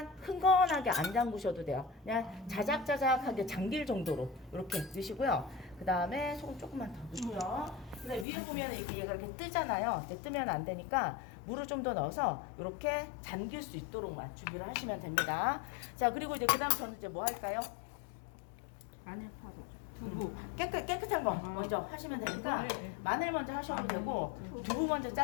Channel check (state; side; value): drops out; right; at 8.2 s